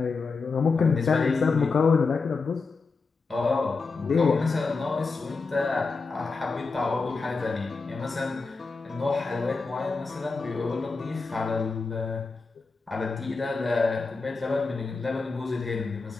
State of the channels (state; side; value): quieter; right; 4.3 dB